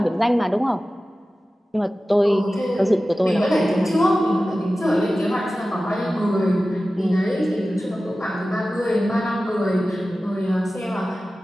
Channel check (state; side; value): normal; both; correlation 0.95